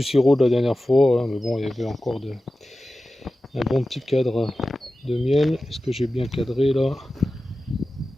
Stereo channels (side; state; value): both; normal; correlation 0.94